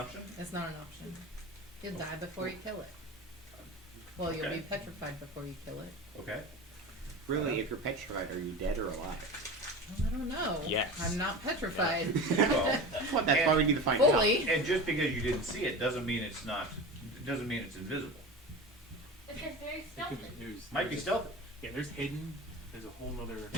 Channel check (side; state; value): both; normal; correlation 0.31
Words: It's not an option. You'll die before you kill it. Well, you'll Okay. be petrified before you kill it. Okay. Really, if you're petrified, are you dead or alive? Well, I don't know. Yes. I'm not petrified. Well, That's why we need to find out. Fully. and just because you didn't see it doesn't mean it's not. Doesn't mean it's invisible. It says very stealthy. Might be stealthy. Yeah, there's hidden. There's a whole nother.